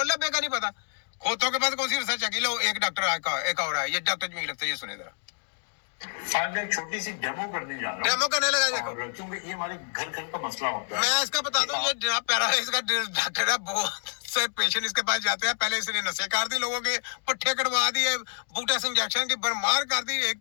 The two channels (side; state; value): right; silent; 57 dB below the other